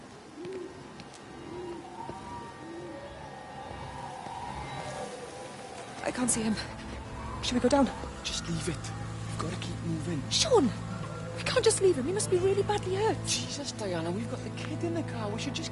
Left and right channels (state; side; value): identical; both; correlation 1.00